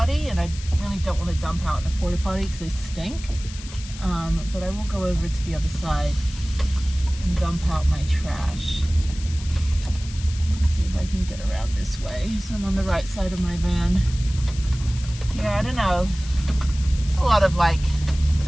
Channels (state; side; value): noise; left; hiss, 15 dB below the sound